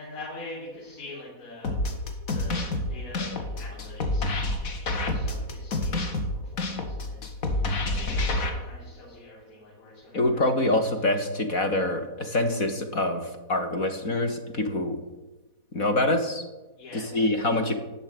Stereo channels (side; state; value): right; late; 4.1 ms